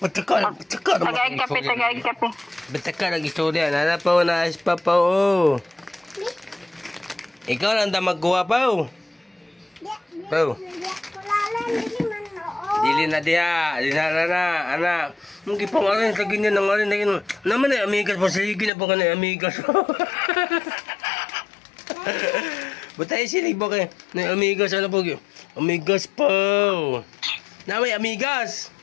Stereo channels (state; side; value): drops out; right; at 18.7 s